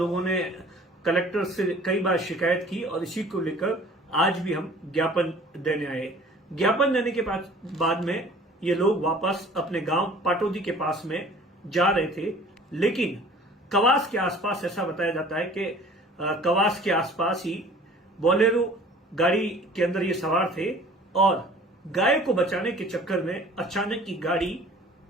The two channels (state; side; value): normal; both; correlation 0.49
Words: ने कलेक्टर से कई बार शिकायत की और इसी को लेकर आज भी हम ज्ञापन देने आए। ज्ञापन देने के बाद में ये लोग वापस अपने गांव पाटोदी के पास में जा रहे थे, लेकिन कवास के आसपास ऐसा बताया जाता है कि कवास के आसपास ही बोलेरो गाड़ी के अंदर ये सवार थे और गाय को बचाने के चक्कर में अचानक की गाड़ी